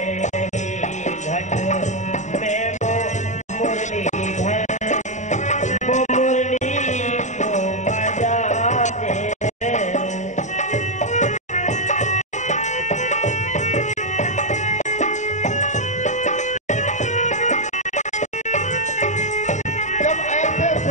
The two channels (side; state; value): right; late; 0.34 ms